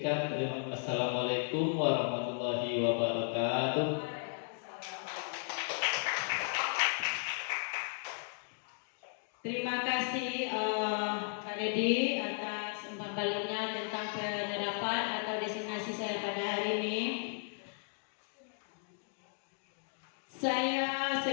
Assalamualaikum warahmatullahi wabarakatuh. Terima kasih Pak Dedi atas umpan baliknya tentang penerapan atau destinasi saya pada hari ini. Saya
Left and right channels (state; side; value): silent; right; 54 dB below the other